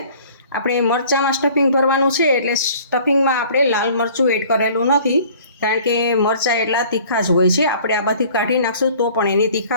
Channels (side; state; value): both; inverted; correlation -0.51